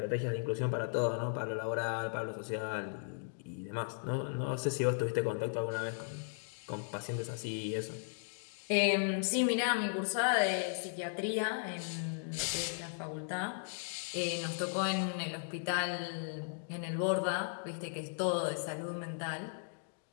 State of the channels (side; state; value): right; silent; digital silence